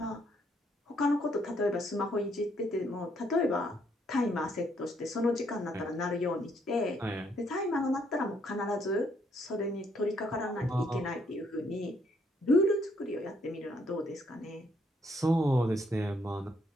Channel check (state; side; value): normal; both; correlation 0.70